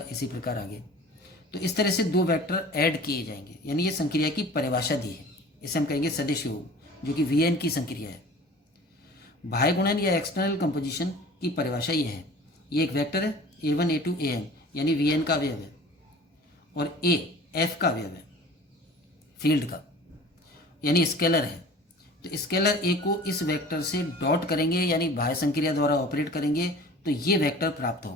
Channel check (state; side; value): normal; both; correlation 0.43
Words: इसी प्रकार आगे। तो इस तरह से दो वेक्टर ऐड किए जाएंगे, यानी ये संक्रिया की परिभाषा दी है। इसे हम कहेंगे सदिश योग, जो कि Vn की संक्रिया है। बाह्य गुणन या एक्सटर्नल कंपोजिशन की परिभाषा ये है, ये एक वेक्टर है a1 a2 an, यानी Vn का अवयव है, और a f का अवयव है फील्ड का, यानी स्केलर है। तो स्केलर a को इस वेक्टर से डॉट करेंगे यानी बाह्य संक्रिया द्वारा ऑपरेट करेंगे तो ये वेक्टर प्राप्त